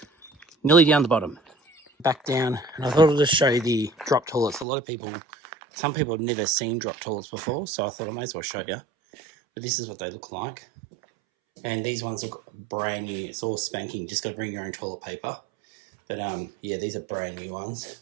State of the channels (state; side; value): drops out; left; at 4.7 s